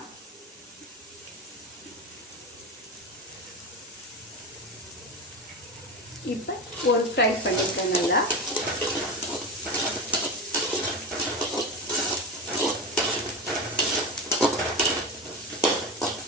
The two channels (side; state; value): both; normal; correlation 0.22